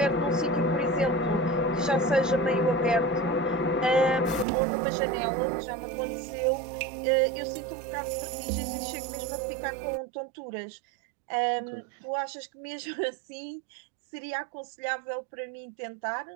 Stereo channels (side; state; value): left; drops out; at 4.5 s